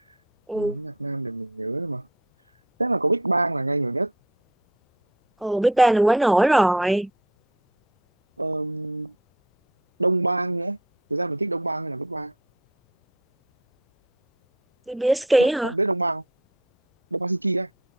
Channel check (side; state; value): both; normal; correlation 0.30